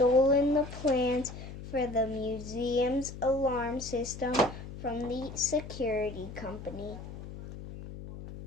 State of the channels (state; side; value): noise; left; hum, 12 dB below the sound